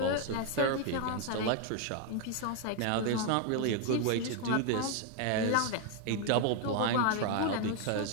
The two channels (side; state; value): both; different; correlation 0.01